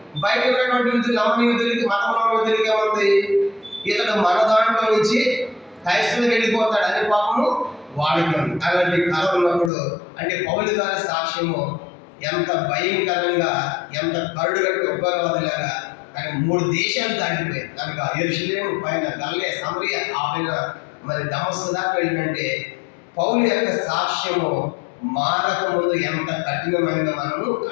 బయట ఉన్నటువంటి యూదులు, నమ్మని యూదులకి, మతంలో యూదులకి ఏముంది? ఇతడు మన దాంట్లో నుంచి క్రైస్తవులకు వెళ్ళిపోతాడు అనే పాపము వాడికి ఉంది. అలాంటి కళ ఉన్నప్పుడు అంటే పౌలు గారి సాక్ష్యము ఎంత భయంకరంగా, ఎంత కరుడుగట్టు ఉగ్రవాదులాగా కానీ 3 దేశాలు దాటిపోయాయి. కనుక యెరూషలేము పైన గలిలయ, సమరయ, ఆ పైన మరి దమస్కు దాకా వెళ్ళినంటే పౌలు యొక్క సాక్ష్యము మారక ముందు ఎంత కఠినమైనదో మనము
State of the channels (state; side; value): drops out; right; at 9.7 s